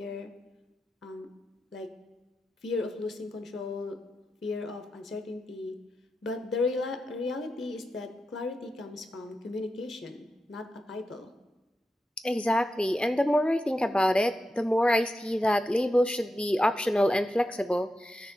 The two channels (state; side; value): normal; both; correlation 0.89